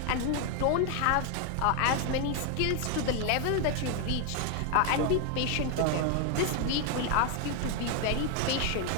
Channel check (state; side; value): different; both; correlation 0.01